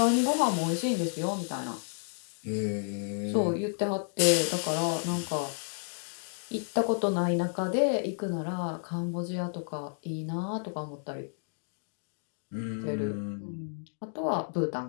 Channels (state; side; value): silent; right; digital silence